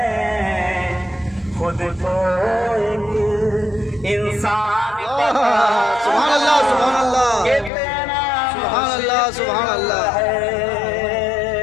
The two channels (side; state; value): right; drops out; at 7.7 s